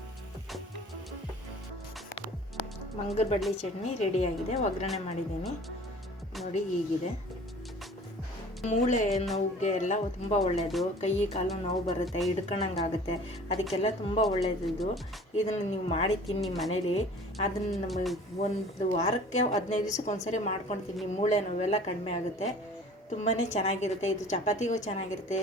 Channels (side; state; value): both; normal; correlation 0.46